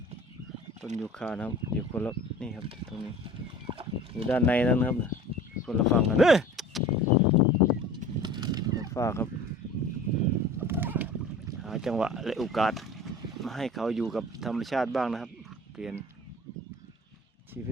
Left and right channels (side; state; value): both; normal; correlation 0.42